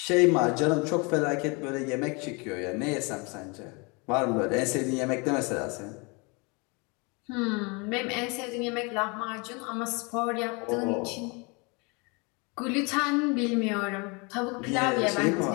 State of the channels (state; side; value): quieter; right; 29.9 dB